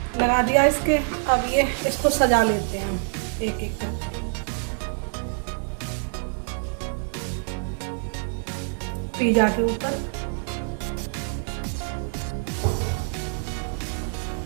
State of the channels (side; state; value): left; silent; 61 dB below the other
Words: लगा दिया इसके। अब ये इसको सजा लेते हैं हम एक एक करके। पिज़्ज़ा के ऊपर